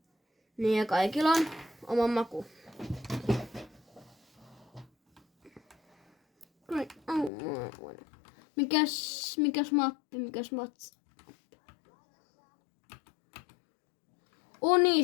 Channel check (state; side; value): drops out; right; at 7.3 s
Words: ja kaikilla on oma maku. Mikäs mappi?